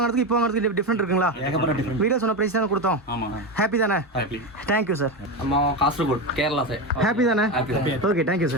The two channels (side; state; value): both; normal; correlation 0.16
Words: இப்போ வாங்குறதுக்கு டிஃப்ரெண்ட் இருக்குங்களா? ஏகப்பட்ட டிஃபரெண்ட். வீடியோ சொன்ன பிரைஸ் தானே கொடுத்தோம். ஆமா. ஹாப்பி தானே? ஹாப்பி. Thank you sir. அம்மா காசர்கோட் கேரளா சார். ஹாப்பி தானே? Happy. Okay, thank you